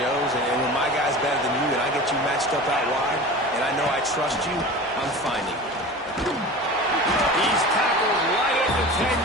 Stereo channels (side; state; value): both; normal; correlation 0.35